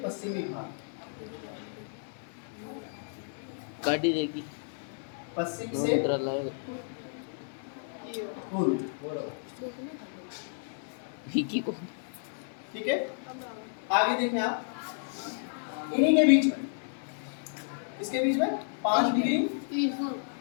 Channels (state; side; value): silent; right; digital silence